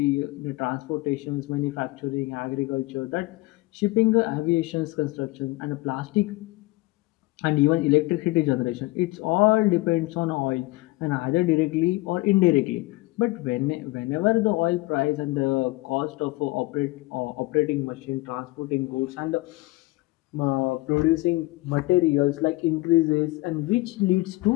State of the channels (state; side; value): quieter; right; 21.6 dB